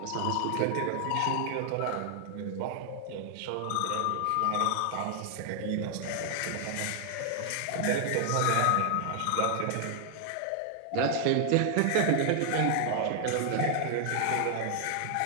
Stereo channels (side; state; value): both; different; correlation 0.00